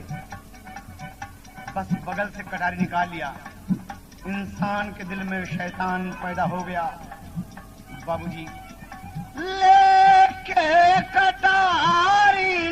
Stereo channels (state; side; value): identical; both; correlation 1.00